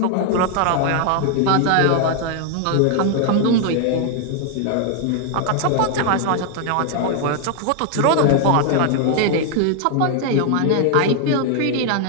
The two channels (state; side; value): different; both; correlation 0.00